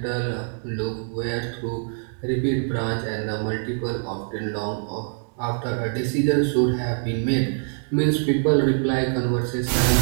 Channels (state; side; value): silent; left; digital silence